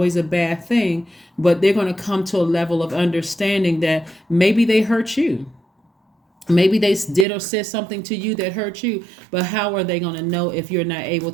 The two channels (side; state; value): left; drops out; at 7.2 s